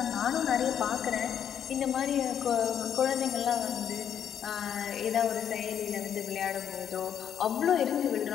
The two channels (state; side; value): quieter; right; 9.0 dB